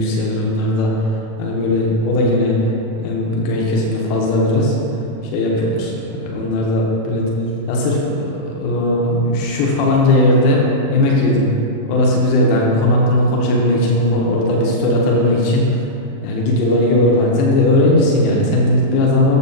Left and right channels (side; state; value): right; late; 36 ms